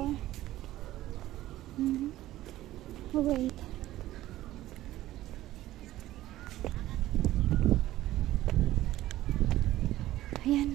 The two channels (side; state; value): left; quieter; 15.1 dB